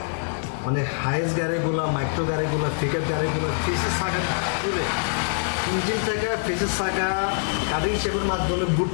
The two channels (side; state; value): right; silent; digital silence